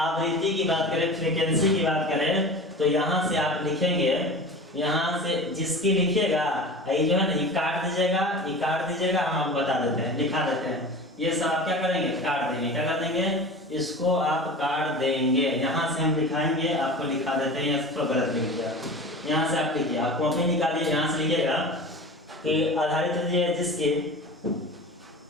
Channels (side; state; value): both; normal; correlation 0.35